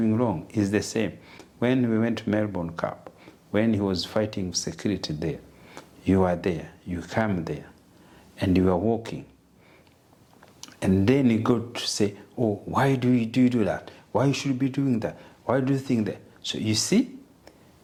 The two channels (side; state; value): both; identical; correlation 1.00